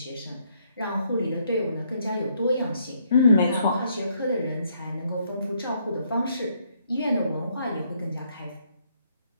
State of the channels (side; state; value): both; inverted; correlation -0.71